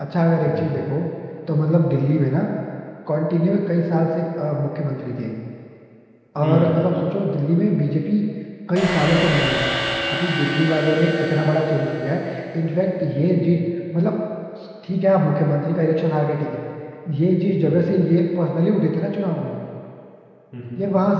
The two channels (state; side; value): identical; both; correlation 1.00